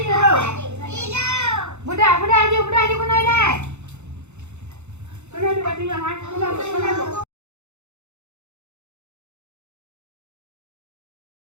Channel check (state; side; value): late; left; 0.82 ms